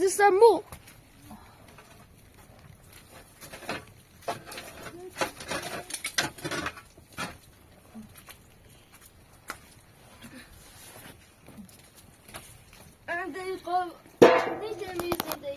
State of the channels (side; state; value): both; identical; correlation 1.00